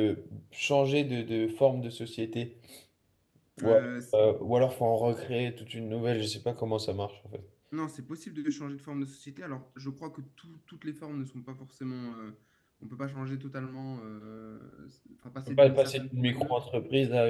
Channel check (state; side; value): identical; both; correlation 1.00